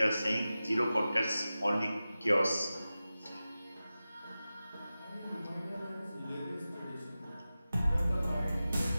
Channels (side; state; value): both; inverted; correlation -0.95